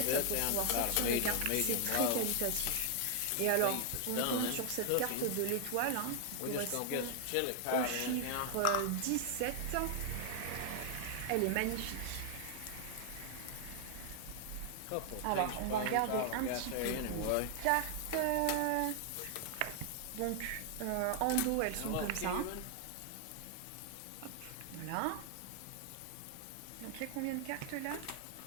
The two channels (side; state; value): both; different; correlation 0.00